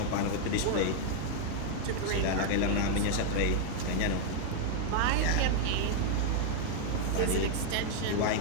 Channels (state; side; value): different; both; correlation 0.00